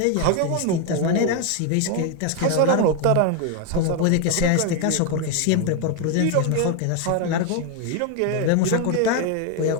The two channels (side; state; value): both; different; correlation 0.01